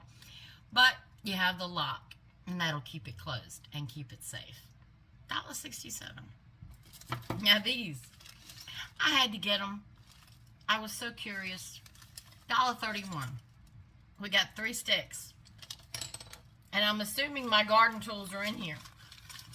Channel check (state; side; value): identical; both; correlation 1.00